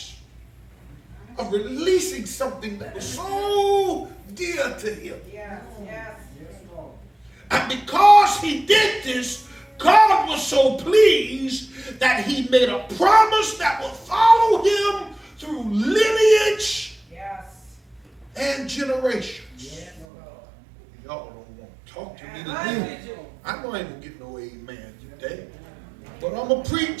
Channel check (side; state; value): left; drops out; at 20.1 s